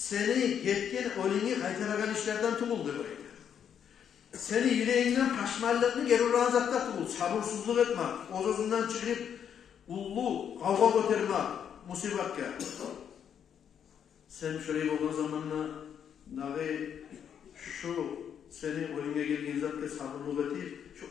getken olini kaytaragan işlerden tuğuldu bayta. Seni yüreğinden paşmallığını geri razakta tuğul. Sabırsızlık etmek. O sözünden çıkıp ullu kavga götürmek. Musibatka. Sen şöyle olduğun zamanla şu seni oline geldiğin zaten sabırlık etip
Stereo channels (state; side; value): quieter; right; 8.4 dB